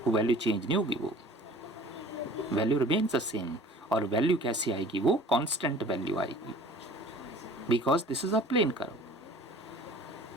वो वैल्यू चेंज नहीं होगी, वो वैल्यू रिमेन्स द सेम। और वैल्यू कैसी आएगी? वो कांस्टेंट वैल्यू आएगी, because this is a plane curve.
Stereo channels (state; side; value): normal; both; correlation 0.47